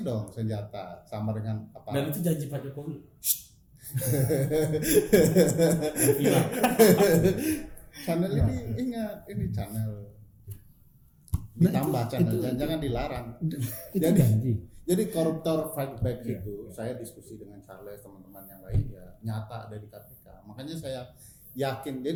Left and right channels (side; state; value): both; identical; correlation 1.00